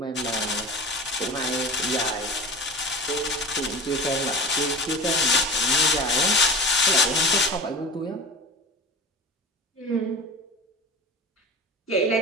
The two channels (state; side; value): normal; both; correlation 0.33